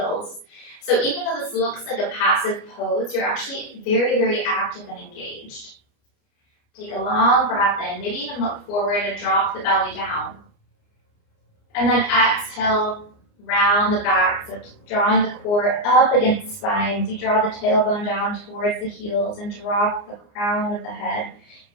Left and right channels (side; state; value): right; late; 29 ms